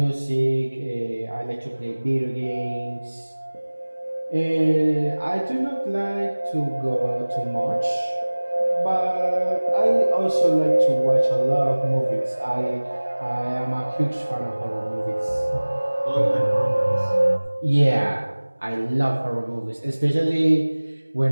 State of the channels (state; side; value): inverted; both; correlation -1.00